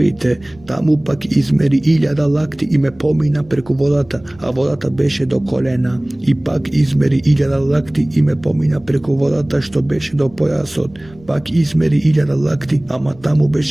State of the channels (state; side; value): noise; right; rumble, 25 dB below the sound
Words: Таму пак измери 1000 лакти и ме помина преку водата, а водата беше до колена. И пак измери 1000 лакти и ме помина преку водата што беше до појасот. Пак измери 1000 лакти, ама таму